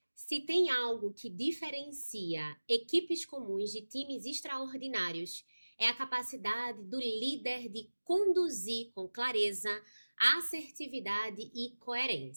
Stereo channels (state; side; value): inverted; both; correlation -1.00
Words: Se tem algo que diferencia equipes comuns de times extraordinários, é a capacidade do líder de conduzir com clareza, assertividade e